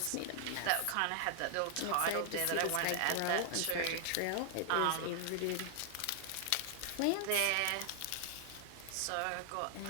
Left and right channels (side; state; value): both; different; correlation 0.00